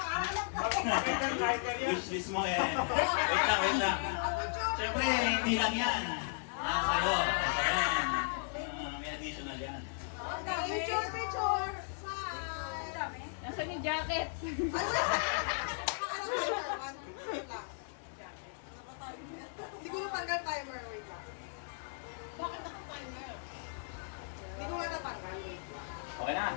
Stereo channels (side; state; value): right; silent; digital silence